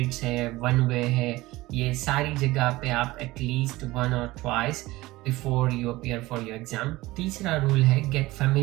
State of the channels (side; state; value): left; quieter; 19.1 dB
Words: है, one way है, ये सारी जगह पे आप एटलीस्ट 1 or twice before you appear for your exam. तीसरा रूल है gate